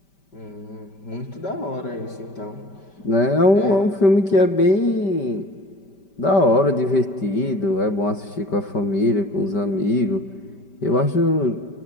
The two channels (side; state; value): right; late; 5.1 ms